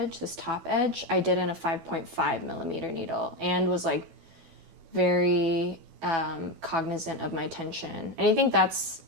this top edge, I did in a 5.5 millimeter needle, and was like very cognizant of my tension. And I think that's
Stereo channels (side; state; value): left; late; 12 ms